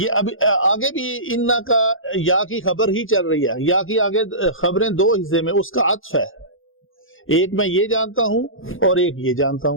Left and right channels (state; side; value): late; right; 0.59 ms